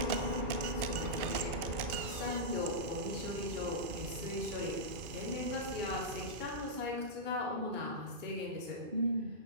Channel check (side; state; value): left; late; 2.8 ms